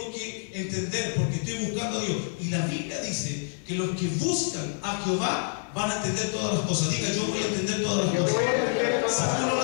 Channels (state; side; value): silent; right; digital silence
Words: que entender porque estoy buscando a Dios. Y la Biblia dice que los que buscan a Jehová van a entender todas las cosas. Diga, yo voy a entender todas las cosas. Si tú no